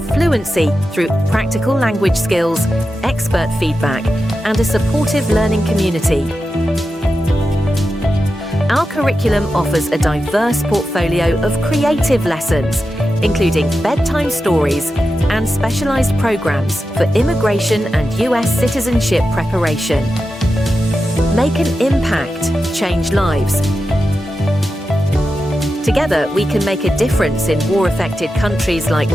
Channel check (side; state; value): both; normal; correlation 0.90